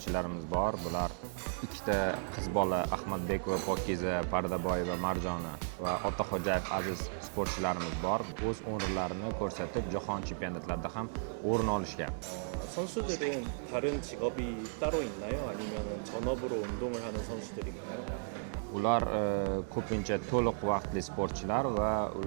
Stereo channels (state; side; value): silent; left; digital silence